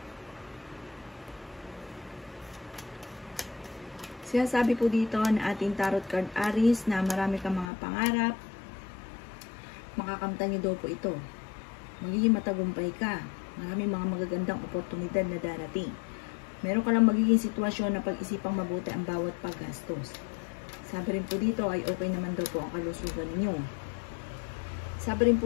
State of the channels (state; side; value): drops out; right; at 7.7 s